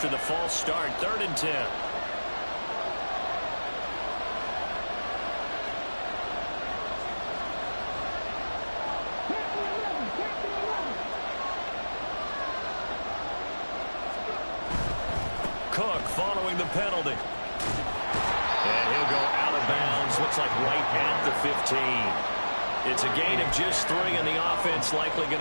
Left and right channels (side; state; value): both; inverted; correlation -1.00